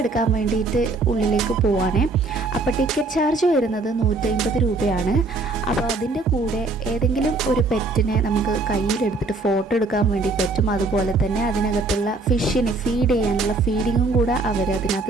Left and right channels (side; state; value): left; quieter; 3.4 dB